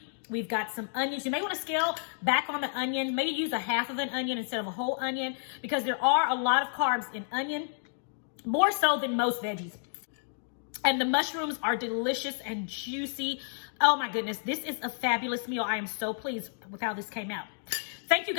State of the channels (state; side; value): silent; right; digital silence